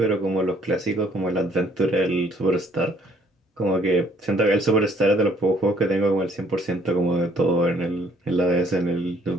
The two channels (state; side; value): normal; both; correlation 0.62